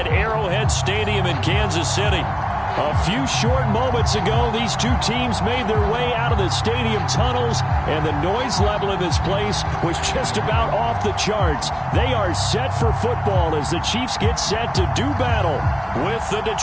Arrowhead Stadium in Kansas City. A few short moments ago, these two teams made their way out of the stadium tunnels, and the noise level in this place was just about off the charts. They are set for football as the Chiefs get set to do battle with the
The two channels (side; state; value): both; identical; correlation 1.00